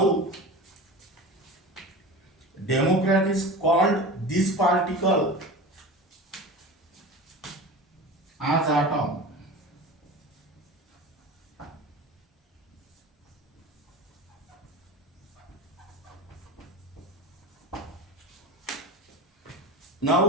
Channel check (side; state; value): both; normal; correlation 0.32